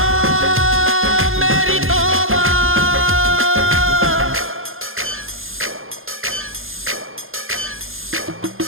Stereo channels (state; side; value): late; left; 0.60 ms